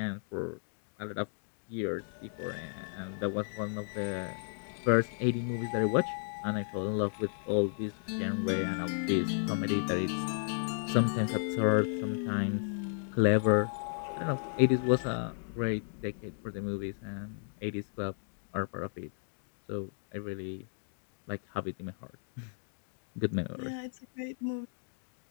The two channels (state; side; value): silent; right; digital silence